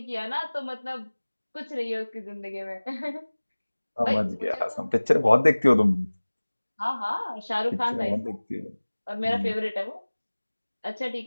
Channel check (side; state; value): both; inverted; correlation -1.00